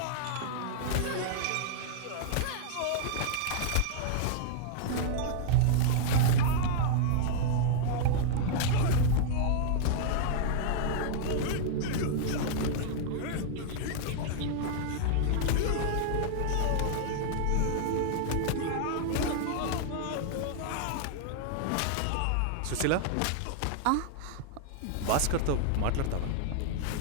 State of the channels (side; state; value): both; different; correlation -0.01